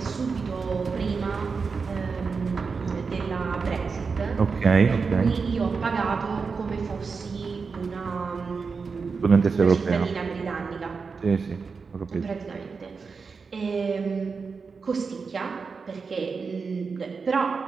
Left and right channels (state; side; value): quieter; left; 5.0 dB